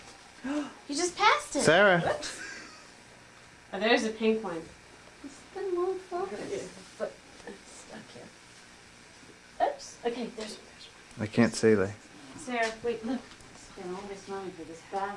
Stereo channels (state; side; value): identical; both; correlation 1.00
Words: You just passed it. Sarah. Oh, there's a pink one. Then won't focus. But it's stuck here. Oops. Okay, there's I can't see that. Sarah, wait, look. Spend all this money for this